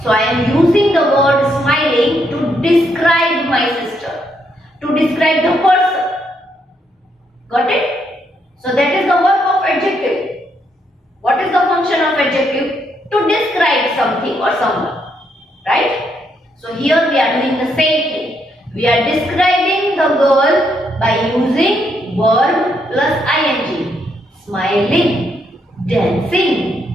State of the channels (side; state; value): both; normal; correlation 0.76